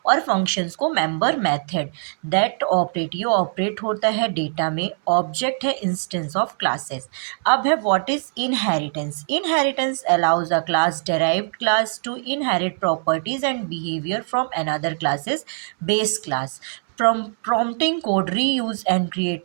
और फंक्शंस को मेंबर मेथड दैट ऑपरेट, ये ऑपरेट होता है डेटा में। ऑब्जेक्ट है इंस्टेंस ऑफ क्लासेस। अब है, what is inheritance? Inheritance allows a class derived class to inherit properties and behavior from another class's base class, prompting code reuse and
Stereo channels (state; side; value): silent; left; 64 dB below the other